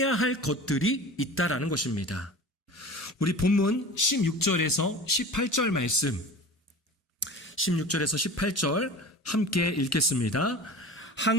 할 것들이 있다라는 것입니다. 우리 본문 16절에서 18절 말씀, 16절에서 18절 함께 읽겠습니다.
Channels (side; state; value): both; normal; correlation 0.37